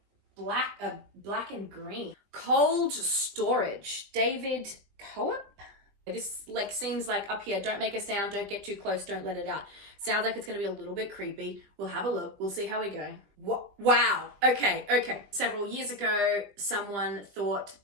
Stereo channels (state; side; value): late; left; 20 ms